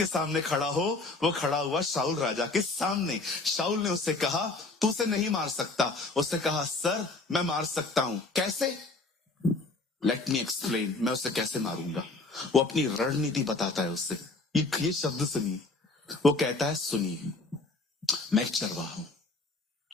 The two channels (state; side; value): quieter; right; 3.4 dB